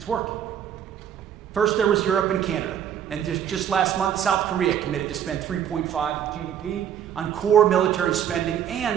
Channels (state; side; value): quieter; left; 9.4 dB